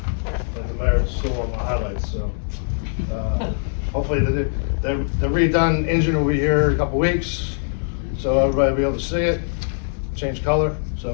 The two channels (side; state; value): right; silent; digital silence